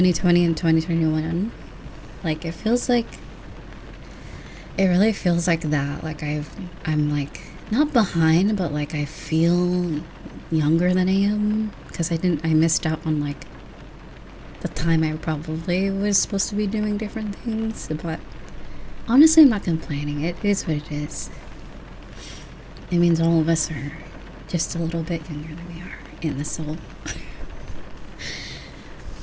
and 2021. Like, it feels like It really feels like that. Like I'm like not behind, but like I feel younger than I am because I missed out on like the time I probably was supposed to be doing different things. But honestly, I'm not complaining. It is what it is. It means all of us are just a little bit younger than we are in the soul.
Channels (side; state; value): both; identical; correlation 1.00